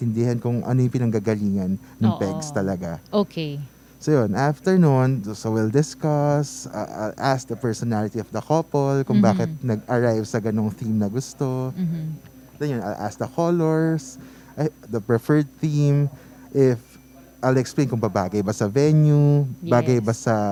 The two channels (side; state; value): both; identical; correlation 1.00